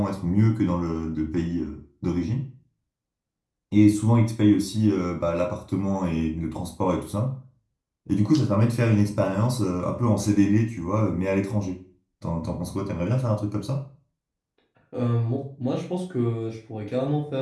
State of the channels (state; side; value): identical; both; correlation 1.00